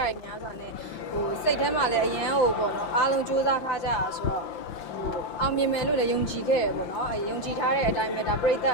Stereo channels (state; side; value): late; right; 5.8 ms